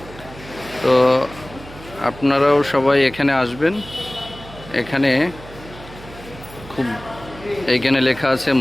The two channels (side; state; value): right; noise; hum, 17 dB below the sound